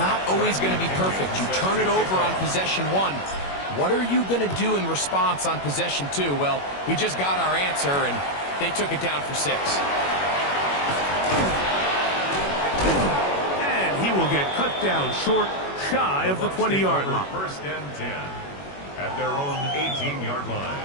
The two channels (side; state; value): right; late; 21 ms